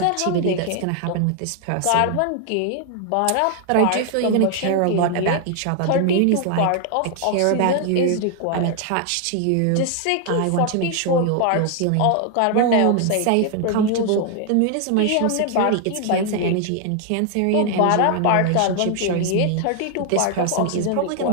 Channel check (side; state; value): both; different; correlation 0.00